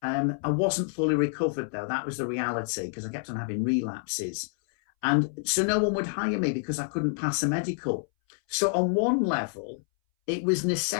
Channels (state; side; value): silent; right; 60 dB below the other